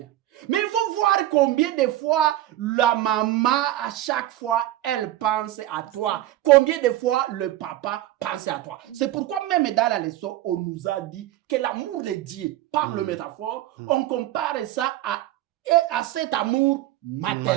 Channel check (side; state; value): left; quieter; 14.3 dB